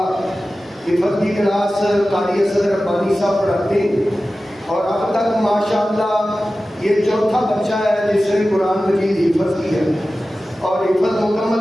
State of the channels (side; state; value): both; normal; correlation 0.95